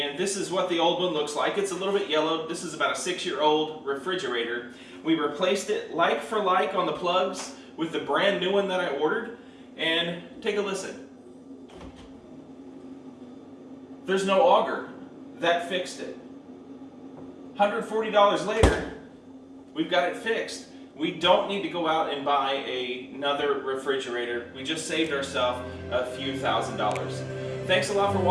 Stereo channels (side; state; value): both; identical; correlation 1.00